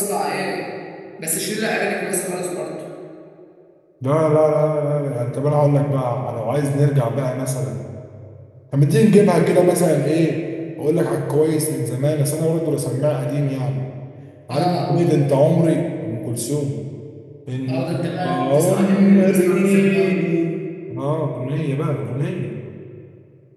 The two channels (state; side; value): identical; both; correlation 1.00